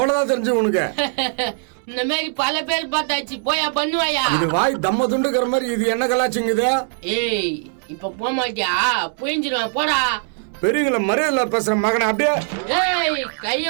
தெரிஞ்சு உனக்கு. இந்த மாதிரி பல பேர் பார்த்தாச்சு, போயா பண்ணுவாயா? இது வாய் தம்ம துண்டுக்கிற மாதிரி இது என்ன கலாச்சிங்குது? ஏய், இப்ப போக மாட்டியா? புரிஞ்சிருவான், போடா. பெரியவங்கள மரியாதை பேசுற மகனை அப்படியே. ஏய்,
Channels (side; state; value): left; silent; 61 dB below the other